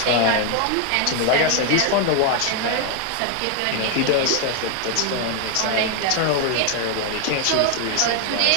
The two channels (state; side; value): different; both; correlation 0.00